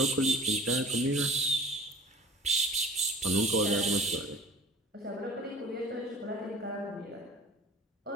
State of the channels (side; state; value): both; normal; correlation 0.44